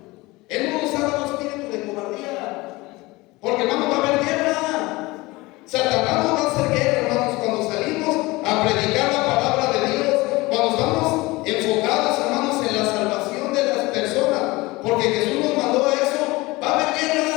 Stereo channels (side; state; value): right; quieter; 21.8 dB